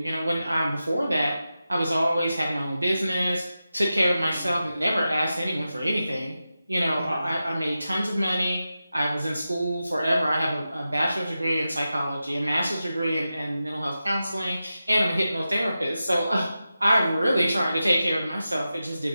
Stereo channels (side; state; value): both; inverted; correlation -0.92